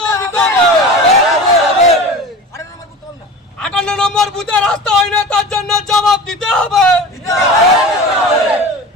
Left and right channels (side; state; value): both; normal; correlation 0.34